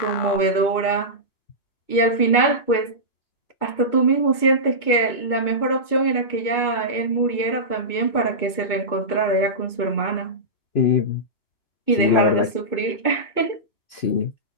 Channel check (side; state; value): right; late; 2.2 ms